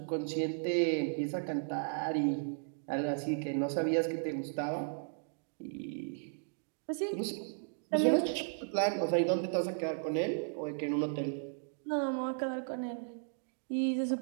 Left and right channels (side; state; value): left; silent; digital silence